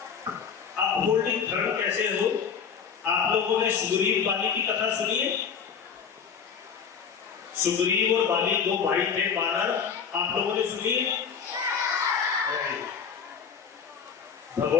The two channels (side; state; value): right; quieter; 6.8 dB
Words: अपहोल्डिंग धर्म कैसे हो? आप लोगों ने सुग्रीव बाली की कथा सुनी है? सुग्रीव और बाली 2 भाई थे वानर, आप लोगों ने सुनी है?